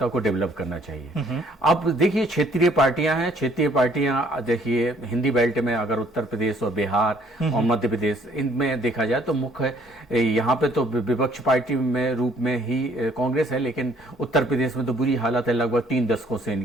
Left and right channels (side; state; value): both; normal; correlation 0.62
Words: को डेवलप करना चाहिए। अब देखिए, क्षेत्रीय पार्टियां हैं, क्षेत्रीय पार्टियां देखिए हिंदी बेल्ट में अगर उत्तर प्रदेश और बिहार और मध्य प्रदेश, इनमें देखा जाए तो मुख्य यहाँ पे तो विपक्ष पार्टी में रूप में ही कांग्रेस है, लेकिन उत्तर प्रदेश में तो बुरी हालत है लगभग 3 दशकों से